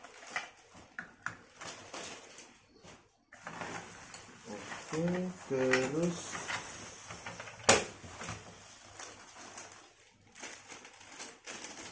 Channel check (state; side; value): identical; both; correlation 1.00